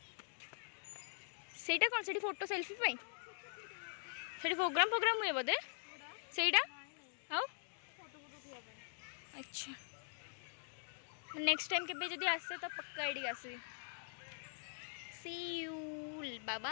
सेटा कौन सेठी फोटो सेल्फी पाई सेठी प्रोग्राम हुए बोधे सेटा आओ अच्छा नेक्स्ट टाइम केबे जदी आसे तो पक्का एडी आसी सी यू बाय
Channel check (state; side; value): silent; right; digital silence